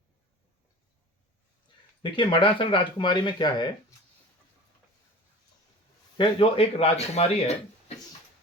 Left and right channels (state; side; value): normal; both; correlation 0.39